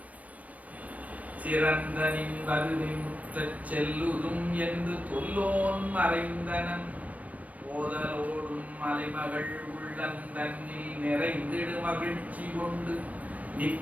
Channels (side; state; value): left; late; 0.069 ms